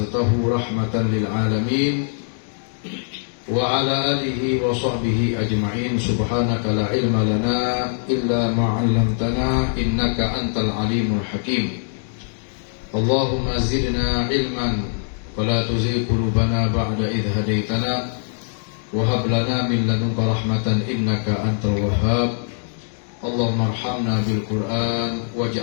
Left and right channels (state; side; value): silent; right; digital silence